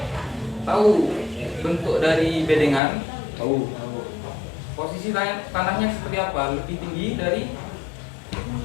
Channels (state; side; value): drops out; right; at 2.8 s